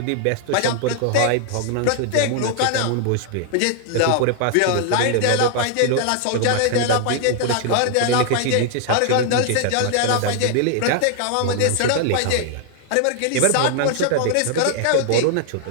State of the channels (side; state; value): both; different; correlation 0.00